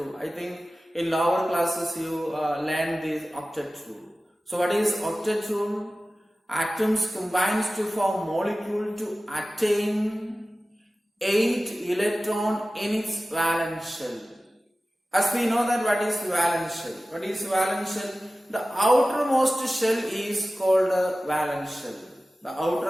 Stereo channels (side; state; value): both; normal; correlation 0.96